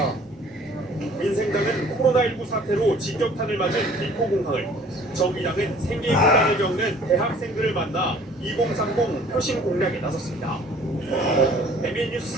민생당은 코로나19 사태로 직격탄을 맞은 비포공항을 정의당은 생계곤란을 겪는 대학생들을 만나 2030 표심 공략에 나섰습니다. MBN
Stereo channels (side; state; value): both; normal; correlation 0.53